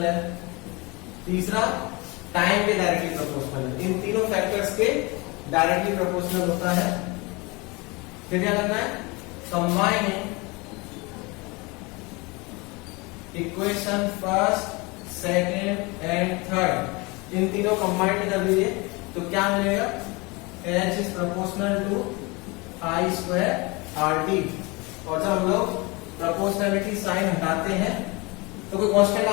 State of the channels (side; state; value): right; quieter; 26.3 dB